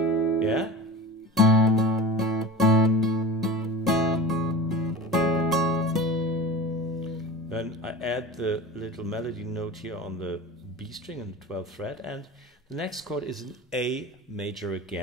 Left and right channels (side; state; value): both; normal; correlation 0.34